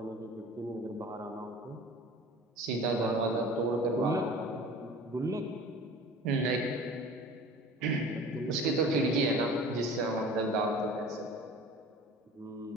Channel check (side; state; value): both; normal; correlation 0.41